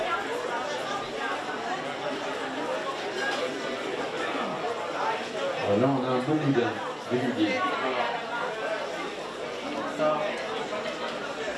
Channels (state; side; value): identical; both; correlation 1.00